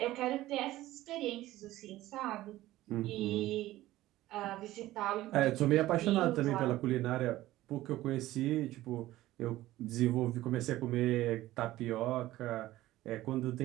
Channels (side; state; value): left; quieter; 15.9 dB